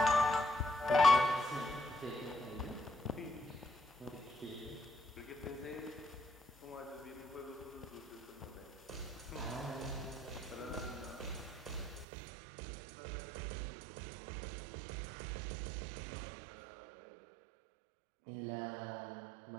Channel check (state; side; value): drops out; left; at 12.1 s